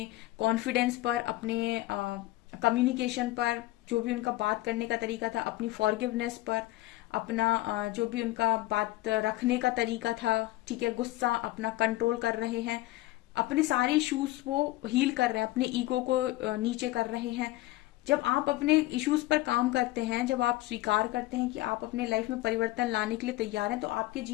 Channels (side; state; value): right; quieter; 17.8 dB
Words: कॉन्फिडेंस पर, अपने कम्युनिकेशन पर, जो भी उनका बात करने का तरीका था, अपनी फॉरगिवनेस पर, अपना जो भी उनका बात रखने का तरीका था, ठीक है, गुस्सा अपना कंट्रोल कर रहे हैं, अपने सारे इश्यूज वो हील कर रहे हैं, अपने ईगो को नीचे कर रहे हैं। जब आप अपने इश्यूज पर काम करते हैं, जब आप स्वीकार करते हैं कि आप अपने लाइफ में परिवर्तन लाने के लिए तैयार हैं, तो आपके